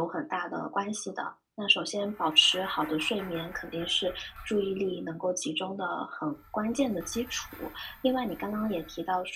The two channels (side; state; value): both; identical; correlation 1.00